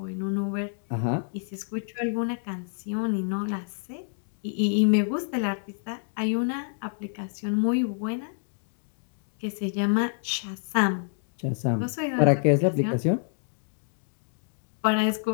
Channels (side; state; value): right; silent; digital silence